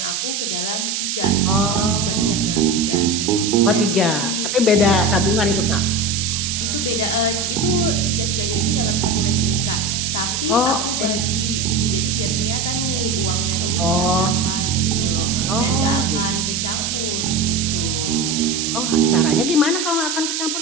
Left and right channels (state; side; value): noise; right; hiss, 2 dB below the sound